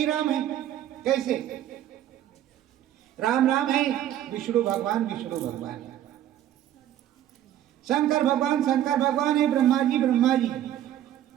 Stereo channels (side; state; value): left; quieter; 11.7 dB